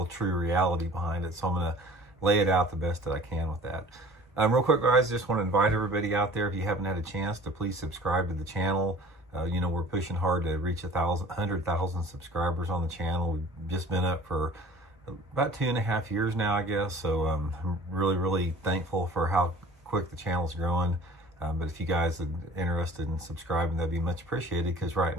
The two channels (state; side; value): normal; both; correlation 0.46